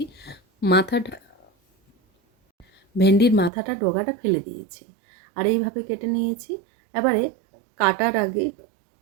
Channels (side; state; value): left; drops out; at 3.5 s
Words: মাথাটা ভেন্ডির মাথাটা ডগাটা ফেলে দিয়েছি আর এইভাবে কেটে নিয়েছি। এবারে কাটার আগে